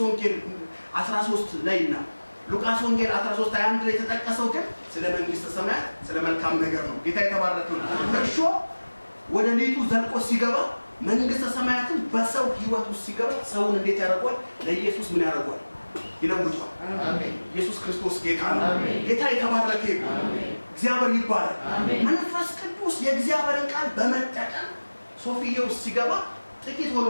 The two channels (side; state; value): both; inverted; correlation -1.00